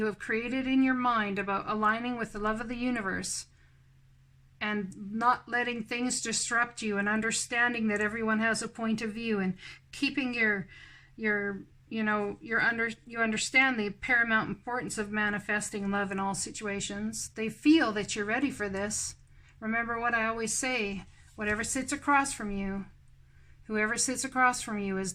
have created in your mind about aligning with the love of the universe and not letting things disrupt you and understanding that everyone has a point of view and keeping you understand the paramount importance of manifesting love in all situations. They feel that you're ready for this. Remember what I always say, whoever sits across from you is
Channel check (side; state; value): both; identical; correlation 1.00